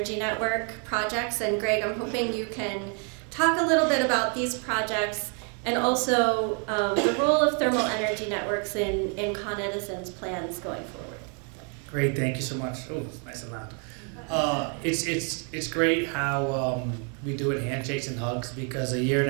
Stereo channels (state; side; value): quieter; left; 39.8 dB